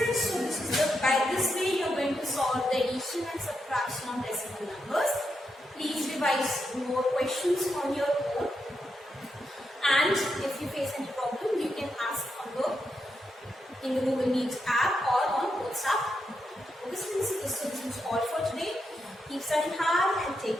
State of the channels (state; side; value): normal; both; correlation 0.84